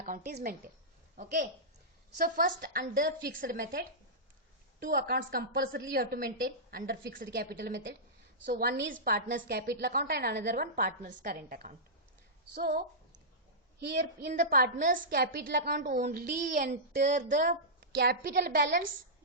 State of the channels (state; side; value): normal; both; correlation -0.15